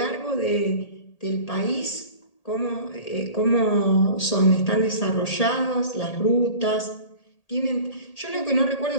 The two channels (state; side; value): late; right; 1.8 ms